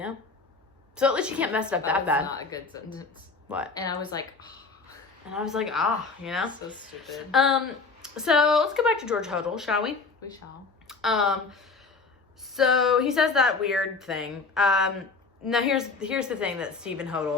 So at least you can't mess it up that bad. That's not a good sentence. What? And I was like... And I was like, you know? So stupid. So let's go back to George Hodel, shall we? We shall. So he says that weird thing. Now here's the thing that Stephen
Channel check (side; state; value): right; quieter; 4.2 dB